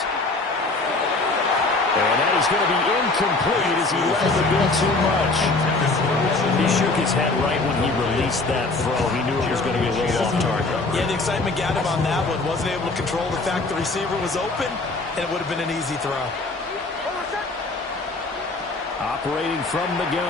And that is going to be incomplete as he left the bit too much. He shook his head right when he released that throw. He knew it was going to be a little off target. Yeah, the excitement got him on that one. Wasn't able to control the fact the receiver was open, and it would have been an easy throw. Operating from the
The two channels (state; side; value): quieter; right; 3.4 dB